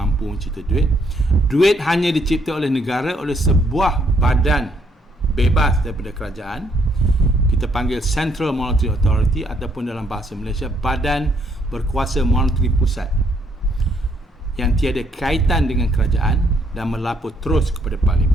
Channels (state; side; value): normal; both; correlation 0.70